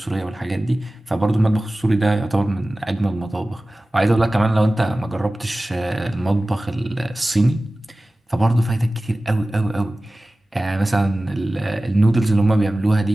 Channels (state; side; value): normal; both; correlation 0.97